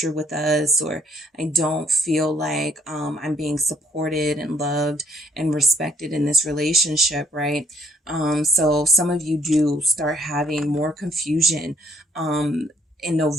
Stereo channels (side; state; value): both; normal; correlation 0.67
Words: with us, or I don't feel like I'm being supported and loved and respected in this relationship, right? So some of you do start having more confusion in